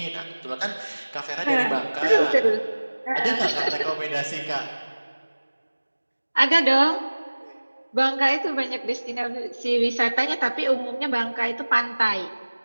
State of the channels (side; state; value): both; inverted; correlation -1.00